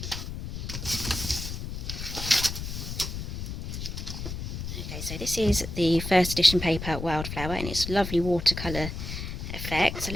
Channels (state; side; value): noise; left; rumble, 6 dB below the sound